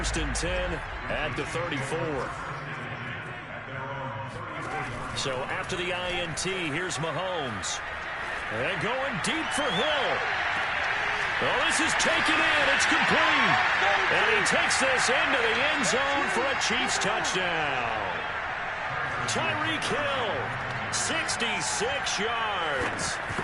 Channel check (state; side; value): identical; both; correlation 1.00